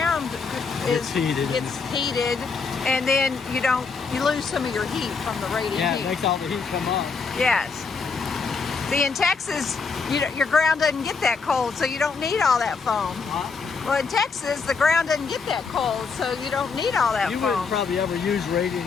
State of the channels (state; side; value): quieter; right; 5.0 dB